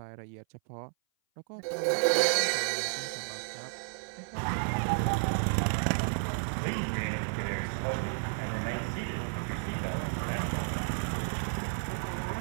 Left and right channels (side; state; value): left; silent; 56 dB below the other